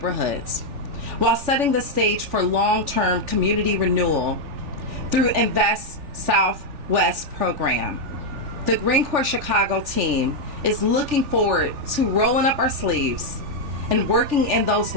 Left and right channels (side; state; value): left; late; 3.4 ms